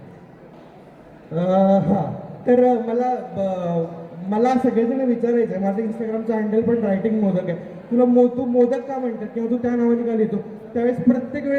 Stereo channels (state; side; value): identical; both; correlation 1.00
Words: हां, तर मला मला सगळेजण विचारायचे, माझं इंस्टाग्रामचं हँडल पण रायटिंग मोदक आहे, तुला तू मोदक का म्हणतात किंवा तू त्या नावाने का लिहितो? त्यावेळेस प्रत्येक